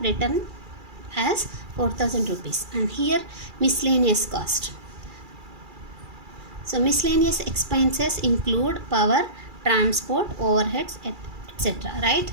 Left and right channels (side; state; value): left; late; 2.3 ms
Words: written as 4000 rupees. And here miscellaneous cost. So miscellaneous expenses include power, transport, overheads, etc. Right?